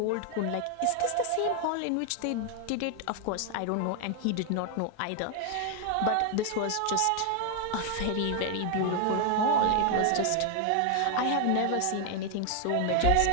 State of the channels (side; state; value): both; different; correlation 0.00